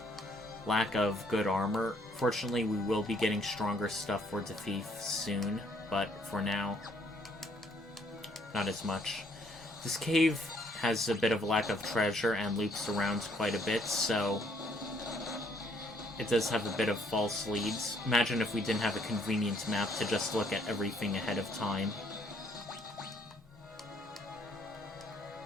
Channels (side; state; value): both; normal; correlation 0.66